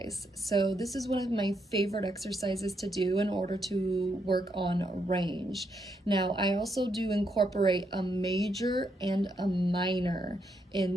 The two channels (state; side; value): normal; both; correlation 0.78